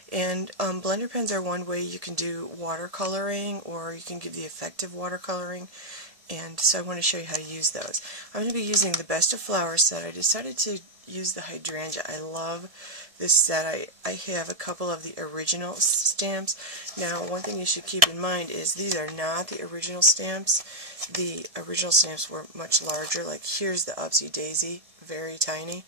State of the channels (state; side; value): late; left; 1.7 ms